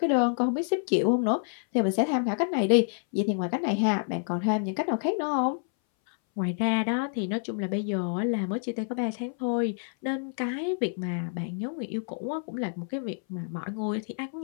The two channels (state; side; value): silent; right; 59 dB below the other